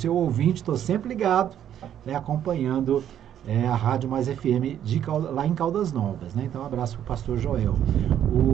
ouvinte, estou sempre ligado, né, acompanhando a Rádio Mais FM lá em Caldas Novas, né? Então um abraço para o pastor Joel.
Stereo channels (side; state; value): left; quieter; 10.3 dB